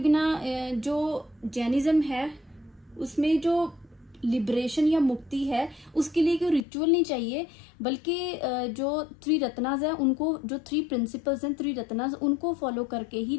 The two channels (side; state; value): right; drops out; at 6.6 s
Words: जो जैनिज्म है उसमें जो लिबरेशन या मुक्ति है उसके लिए कोई रिचुअल नहीं चाहिए, बल्कि जो 3 रत्नास है उनको, जो 3 प्रिंसिपल्स हैं 3 रत्नास, उनको फॉलो करके ही